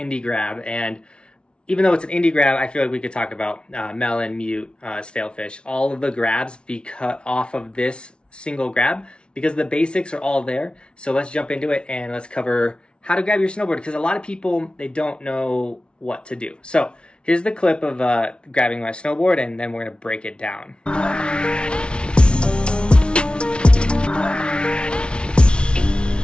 grab, and even though it's an indie grab, I feel like we could talk about melon, mute, stalefish, all of the grabs be cut off of this single grab because the basics are all there. So let's jump into it and let's cover how to grab your snowboard, because a lot of people, they don't know what to do. So here's the clip of grabbing my snowboard, and then we're gonna break it down. All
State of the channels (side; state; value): right; late; 0.057 ms